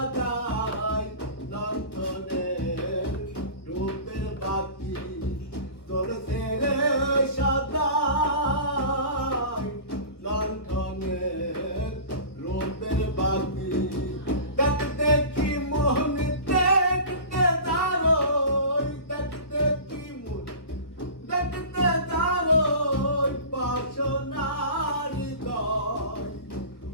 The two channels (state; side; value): late; right; 1.2 ms